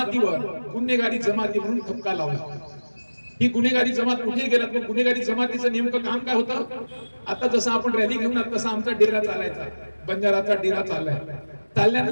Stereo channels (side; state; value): both; inverted; correlation -1.00